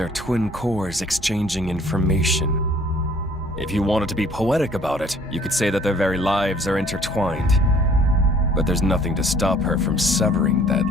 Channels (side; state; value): both; normal; correlation 0.56